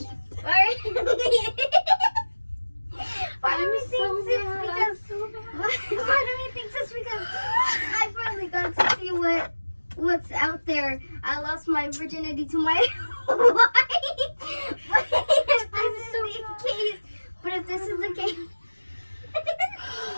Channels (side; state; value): both; inverted; correlation -1.00